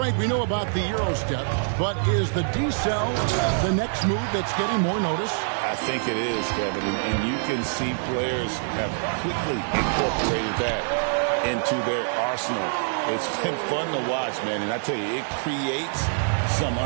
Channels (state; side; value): silent; left; 56 dB below the other